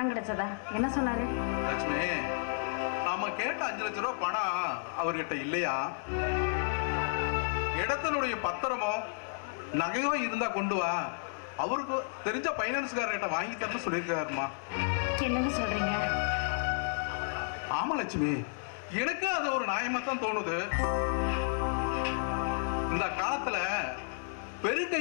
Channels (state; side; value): silent; right; digital silence